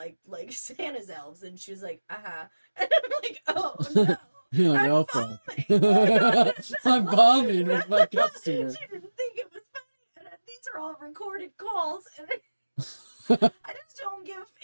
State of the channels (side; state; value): both; inverted; correlation -1.00